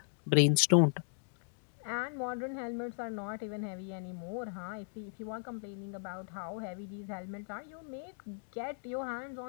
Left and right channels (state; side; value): silent; right; digital silence